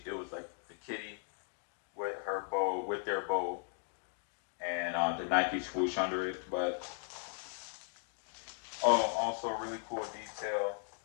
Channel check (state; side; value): silent; right; 53 dB below the other